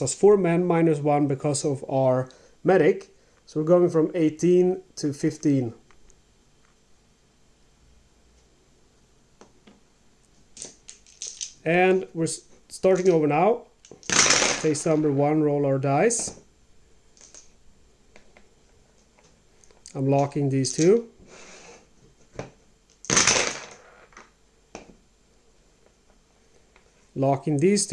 us 4 men minus 1 because of our medic. So we're going from 18 to 15. And we're starting over now. Phase number 1, roll our dice. I'm locking these two. Locking these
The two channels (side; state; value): both; identical; correlation 1.00